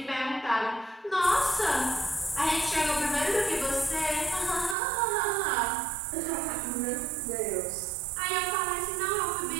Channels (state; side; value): drops out; left; at 4.8 s